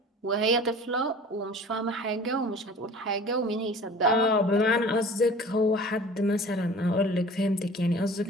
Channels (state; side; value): normal; both; correlation 0.43